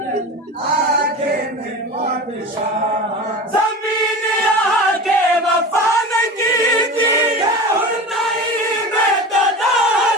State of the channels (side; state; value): both; normal; correlation 0.31